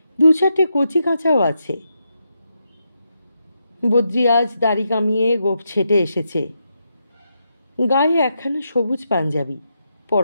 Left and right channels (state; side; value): inverted; both; correlation -0.83